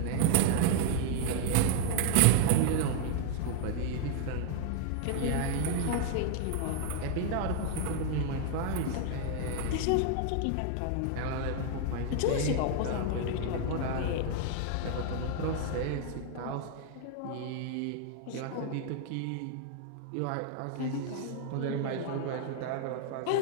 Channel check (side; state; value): both; different; correlation 0.00